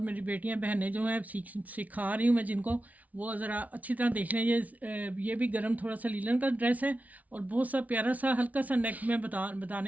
बेटियां बहनें जो हैं सिखा रही हूँ मैं जिनको, वो ज़रा अच्छी तरह देख लें। ये भी गरम थोड़ा सा लीलन का ड्रेस है और बहुत सा प्यारा सा हल्का सा नेक में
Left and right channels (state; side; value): late; left; 0.072 ms